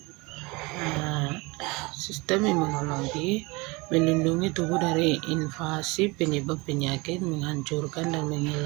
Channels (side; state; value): left; quieter; 25.1 dB